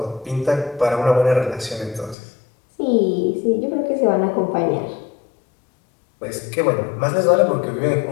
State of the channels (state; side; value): drops out; right; at 2.1 s